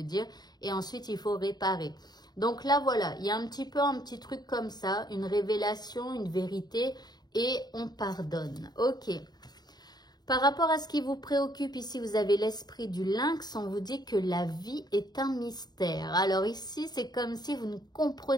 dire. Et ensuite, il faut réparer. Donc là, voilà, il y a un petit truc comme ça, une révélation, une vérité, et on pardonne. Ok. Par rapport à ce qui vous préoccupe, ici, vous avez l'esprit du lynx, on vous dit que la vie est un mystère. Alors ici, c'est comme si vous ne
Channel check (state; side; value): late; right; 0.20 ms